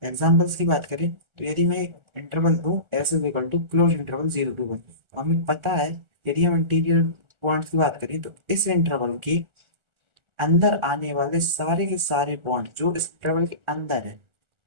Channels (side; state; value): left; late; 1.4 ms